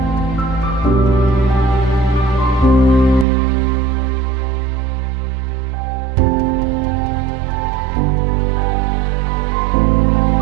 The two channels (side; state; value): left; drops out; at 3.2 s